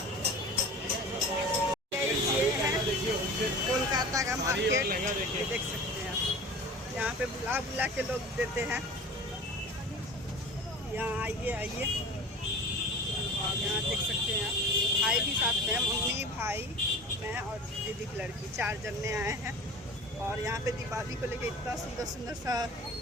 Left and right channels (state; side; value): normal; both; correlation 0.38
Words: ये है कोलकाता का मार्केट, देख सकते हैं आप। यहाँ पे बुला बुला के लोग देते हैं, यहाँ आइए आइए। और यहाँ देख सकते हैं आप, भाई भी साथ में, मम्मी भाई मैं और दीदी की लड़की, 4 जने आए हैं। और यहाँ पे दीपावली को लेके इतना सुंदर सुंदर सा